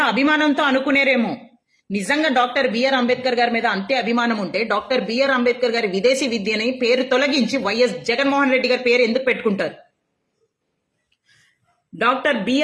అభిమానంతో అనుకునేరేమో, నిజంగా డాక్టర్ బిఆర్ అంబేద్కర్ గారి మీద అంతే అభిమానం ఉంటే డాక్టర్ బిఆర్ అంబేద్కర్ గారి విదేశీ విద్యని పేరు తొలగించి వైఎస్ జగన్మోహన్ రెడ్డి గారి పేరు ఎందుకు పెట్టుకుంటారు? డాక్టర్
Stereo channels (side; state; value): both; identical; correlation 1.00